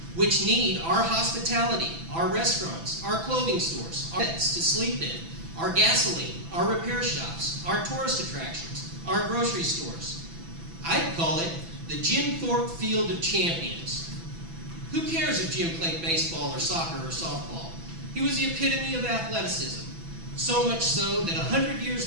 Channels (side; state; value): left; late; 6.0 ms